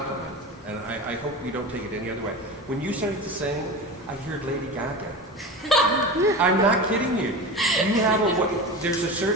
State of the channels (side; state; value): both; normal; correlation 0.29